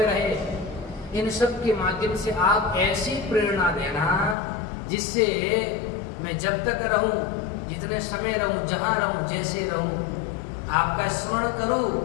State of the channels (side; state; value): right; drops out; at 4.4 s